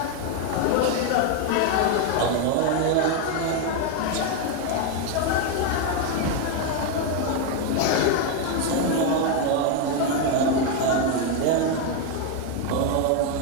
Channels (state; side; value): different; both; correlation 0.01